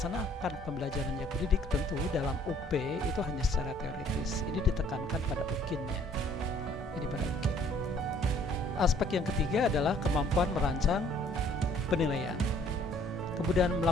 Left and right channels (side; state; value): both; normal; correlation 0.59